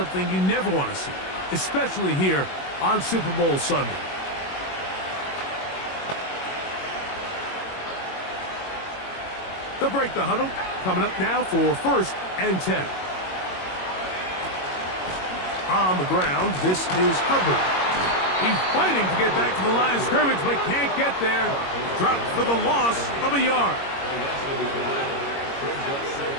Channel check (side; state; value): right; late; 22 ms